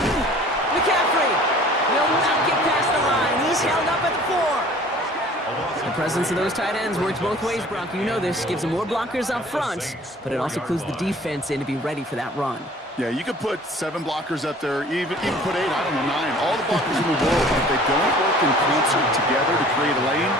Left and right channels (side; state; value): both; normal; correlation 0.49